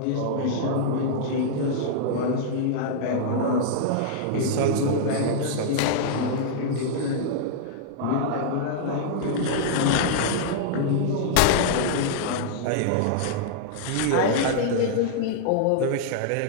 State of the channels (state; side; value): different; both; correlation -0.01